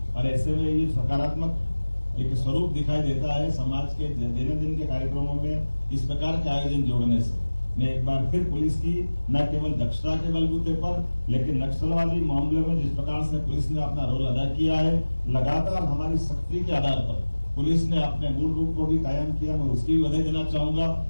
और ऐसे में ये सकारात्मक एक स्वरूप दिखाई देता है समाज के दैनंदिन के कार्यक्रमों में इस प्रकार के आयोजन जोड़ने से। मैं एक बार फिर पुलिस की न केवल दक्षता के बलबूते पर लेकिन नक्सलवादी मामले में जिस प्रकार से पुलिस ने अपना रोल अदा किया है, लगातार हमारी सख्ती के आधार पर पुलिस ने अपने मूल रूप को भी कायम किया। मैं उसकी भी बधाई देना चाहूंगा।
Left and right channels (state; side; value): inverted; both; correlation -1.00